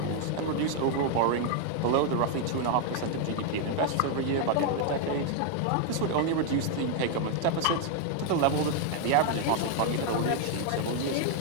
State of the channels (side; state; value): both; different; correlation 0.00